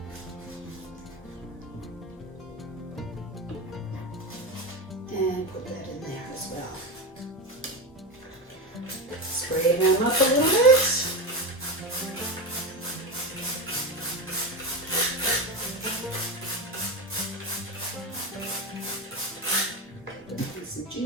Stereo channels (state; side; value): normal; both; correlation 0.18